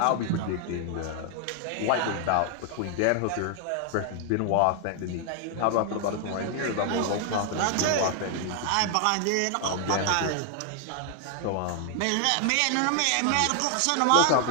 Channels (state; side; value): different; both; correlation 0.00